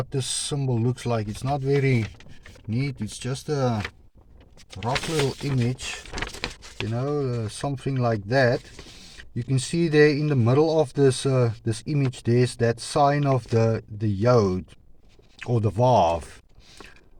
this symbol looks like. It's not very neat. It's just a rough little image, you know, something like that. You can see there in the middle of this image, there's that sign of the yod or the vav,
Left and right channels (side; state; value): both; identical; correlation 1.00